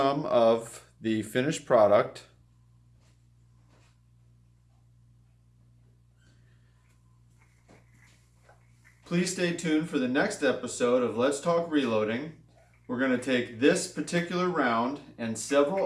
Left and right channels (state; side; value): identical; both; correlation 1.00